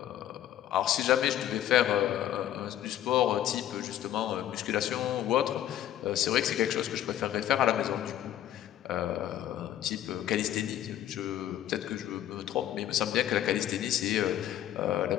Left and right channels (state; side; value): quieter; right; 11.9 dB